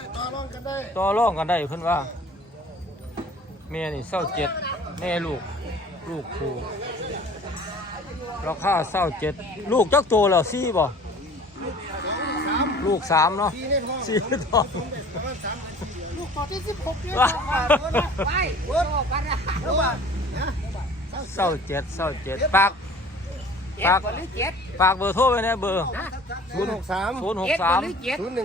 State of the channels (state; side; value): normal; both; correlation 0.47